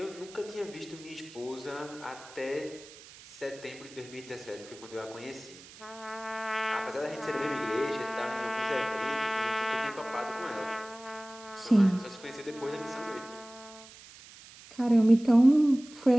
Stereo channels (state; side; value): noise; right; hiss, 19 dB below the sound